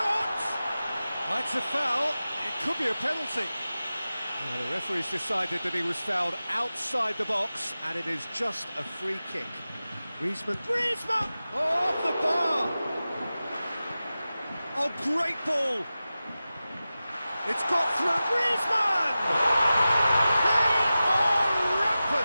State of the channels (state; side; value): inverted; both; correlation -0.95